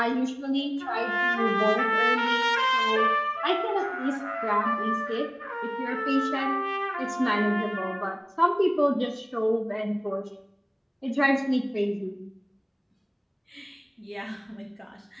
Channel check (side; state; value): both; identical; correlation 1.00